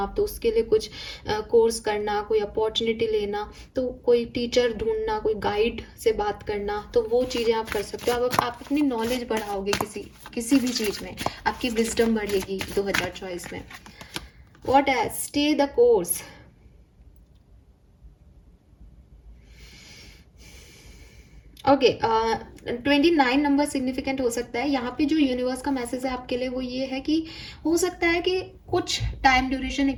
तो उसके लिए कुछ कोर्स करना, कोई अपॉर्चुनिटी लेना, तो कोई टीचर ढूंढना, कोई गाइड से बात करना, तो वो चीज़ें आप कर सकते हो। आप अपनी नॉलेज बढ़ाओगे किसी भी चीज़ में, आपकी विजडम बढ़ेगी 2024 में। What else? Stay the course. Okay, 29 number significant हो सकता है। यहाँ पे जो यूनिवर्स का मैसेज है आपके लिए वो ये है कि हो सकता है कि कुछ टाइम ड्यूरेशन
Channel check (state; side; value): identical; both; correlation 1.00